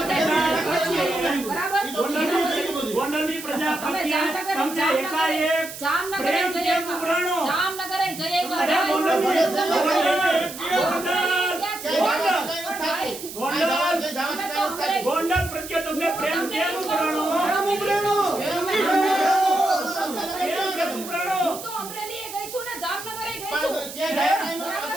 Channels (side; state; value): right; noise; hiss, 11 dB below the sound